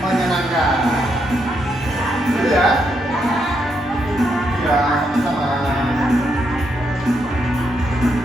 Gitu ya? Ya, sama-sama.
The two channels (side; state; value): both; normal; correlation 0.79